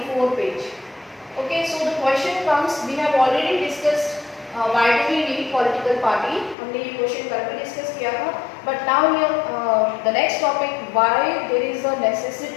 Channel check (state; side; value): drops out; right; at 6.6 s